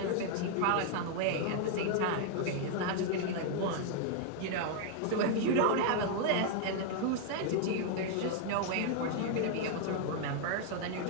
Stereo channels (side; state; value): both; different; correlation 0.00